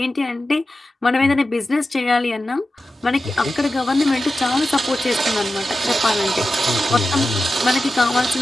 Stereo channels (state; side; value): normal; both; correlation 0.93